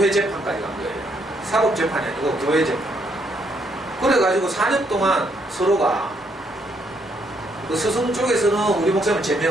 재판까지 간 거예요. 사법 재판이 아니고 교회 재판. 그래가지고 4년 동안 서로가 그 스승 쪽에서는 우리 목사님을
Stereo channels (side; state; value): both; normal; correlation 0.73